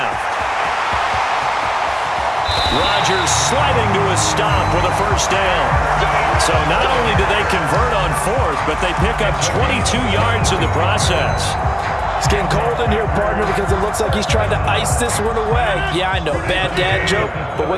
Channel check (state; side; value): identical; both; correlation 1.00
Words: Rodgers sliding to a stop with a first down. So not only do they convert on fourth, but they pick up 22 yards in the process. It's getting cold in here, partner, because it looks like he's trying to ice this one away. Yeah, I know, bad dad joke, but